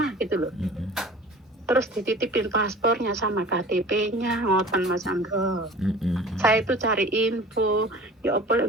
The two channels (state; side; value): normal; both; correlation 0.42